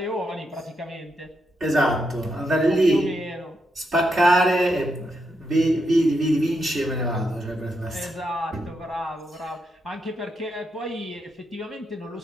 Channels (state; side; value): normal; both; correlation 0.82